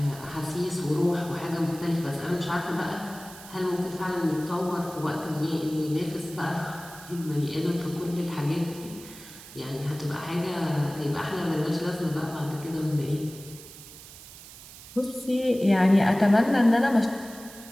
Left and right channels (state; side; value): noise; right; hiss, 17 dB below the sound